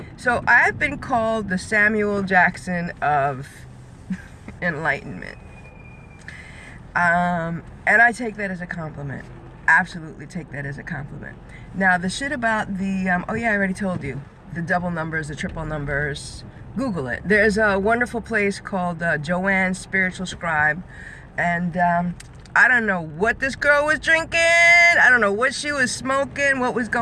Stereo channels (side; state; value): both; identical; correlation 1.00